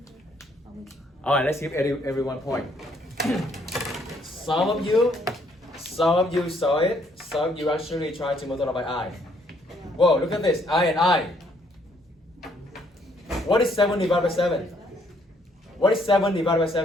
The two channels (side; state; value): both; normal; correlation 0.68